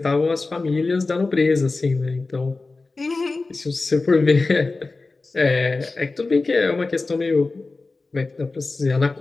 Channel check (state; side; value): quieter; right; 3.6 dB